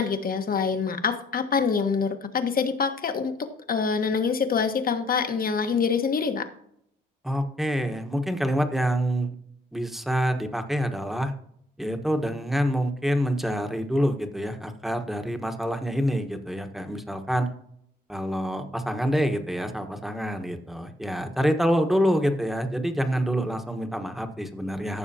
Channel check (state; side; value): normal; both; correlation 0.71